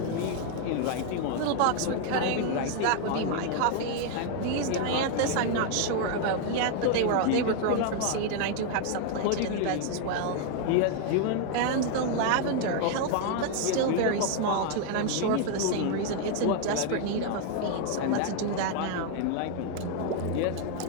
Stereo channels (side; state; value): both; different; correlation 0.00